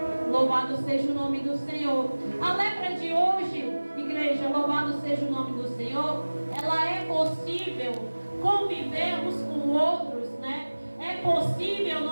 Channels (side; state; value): both; inverted; correlation -1.00